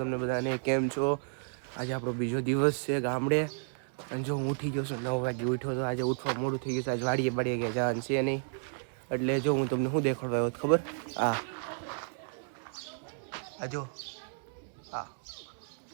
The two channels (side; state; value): left; silent; digital silence